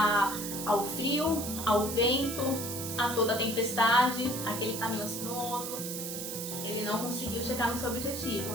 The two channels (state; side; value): noise; right; hiss, 6 dB below the sound